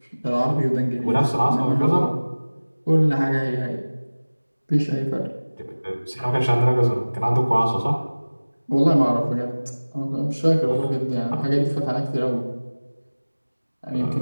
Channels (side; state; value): both; inverted; correlation -1.00